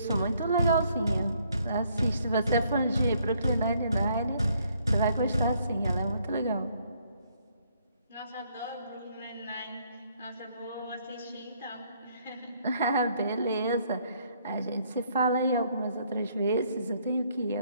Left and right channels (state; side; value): inverted; both; correlation -0.68